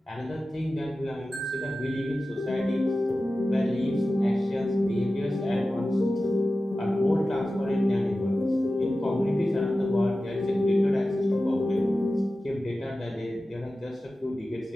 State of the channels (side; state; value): both; normal; correlation 0.94